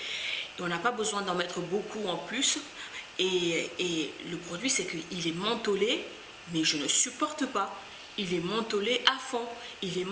Et on n'a pas besoin d'en mettre beaucoup en plus. Et le produit, c'est qu'il est mentholé, mais je ne supporte pas. Il est mentholé à fond. Il est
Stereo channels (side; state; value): both; identical; correlation 1.00